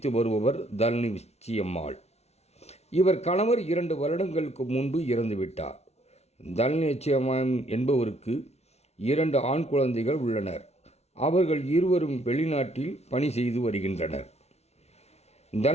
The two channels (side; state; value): right; late; 0.31 ms